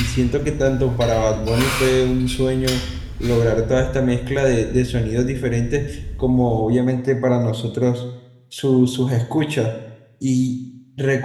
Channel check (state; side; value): identical; both; correlation 1.00